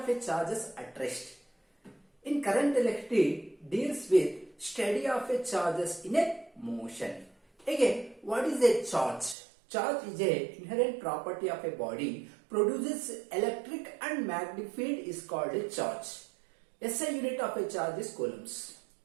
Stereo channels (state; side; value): drops out; left; at 9.3 s